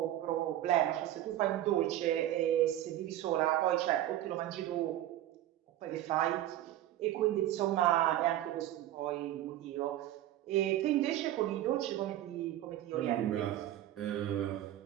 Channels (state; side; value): quieter; left; 13.2 dB